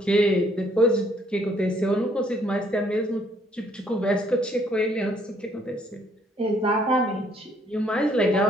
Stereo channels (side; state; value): both; normal; correlation 0.66